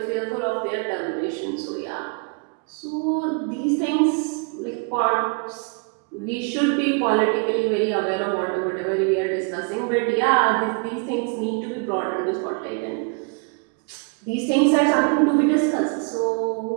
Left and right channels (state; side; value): quieter; left; 34.9 dB